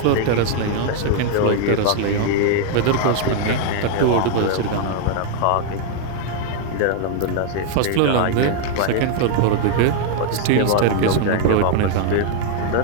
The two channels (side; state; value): both; different; correlation 0.00